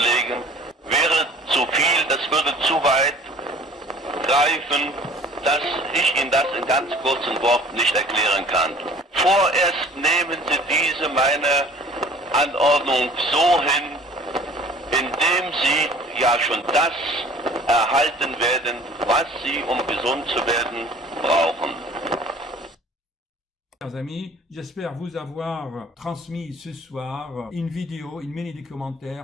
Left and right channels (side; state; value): both; normal; correlation 0.49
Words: wäre zu viel, das würde zu weit greifen, dass ich Ihnen das in ganz kurzen Worten nicht erklären kann. Vorerst nehmen Sie diese meine Anordnung so hin, indem Sie ja schon das erhalten werden, was Sie, um gesund zu werden, brauchen. Chers amis, j'espère vous avoir transmis ce soir une vidéo, une